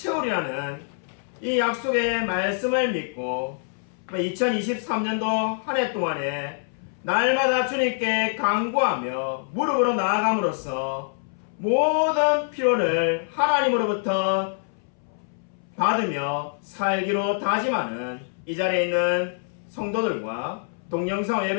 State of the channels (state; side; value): silent; right; 62 dB below the other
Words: 이 약속의 말씀을 믿고 2023년도 한 해 동안에 날마다 주님께 간구하며 무릎으로 나아감으로써 모든 필요를 하나님으로부터 받으며 살기로 다짐하는 이 자리에 있는 성도들과 동영상